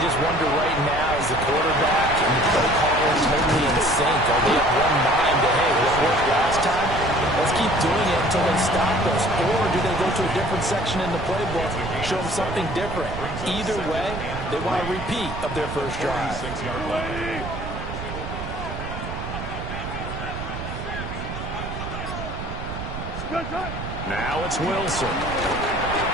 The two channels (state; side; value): noise; right; rumble, 8 dB below the sound